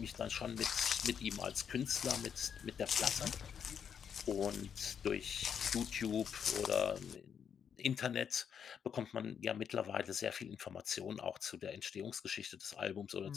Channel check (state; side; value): quieter; right; 7.7 dB